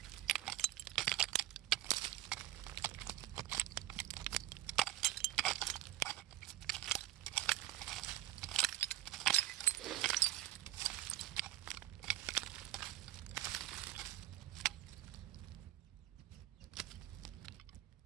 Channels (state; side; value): quieter; left; 15.4 dB